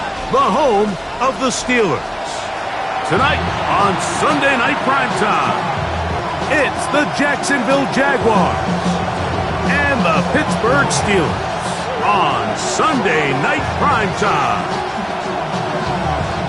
the home of the Steelers. Tonight on Sunday Night Primetime, it's the Jacksonville Jaguars and the Pittsburgh Steelers on Sunday Night Primetime.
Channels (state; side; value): identical; both; correlation 1.00